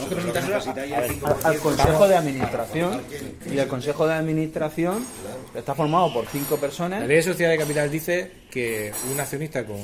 que presentárselo al Consejo de Administración. Y el Consejo de Administración está formado por 5 personas. La Ley de Sociedad de Capital dice que un accionista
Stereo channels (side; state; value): both; identical; correlation 1.00